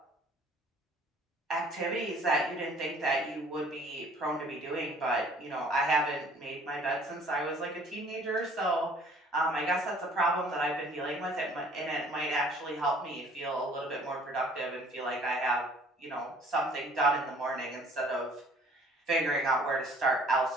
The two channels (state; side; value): normal; both; correlation 0.54